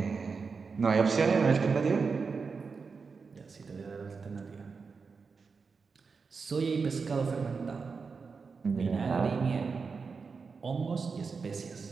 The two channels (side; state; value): left; quieter; 5.0 dB